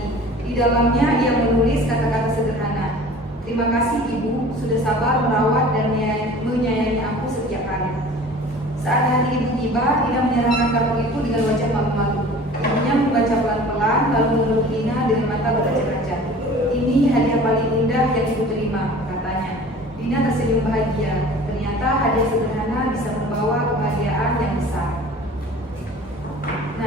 Di dalamnya ia menulis kata-kata sederhana. Terima kasih ibu, sudah sabar merawat dan menyayangi aku setiap hari. Saat hari ibu tiba, Dina menyerahkan kartu itu dengan wajah malu-malu. Ibunya membaca pelan-pelan, lalu memeluk Dina dengan mata berkaca-kaca. Ini hadiah paling indah yang ibu terima, katanya. Dina tersenyum bahagia. Ternyata hadiah sederhana bisa membawa kebahagiaan yang besar.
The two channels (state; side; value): normal; both; correlation 0.44